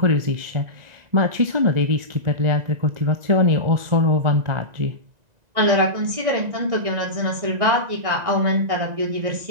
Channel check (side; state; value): left; late; 1.9 ms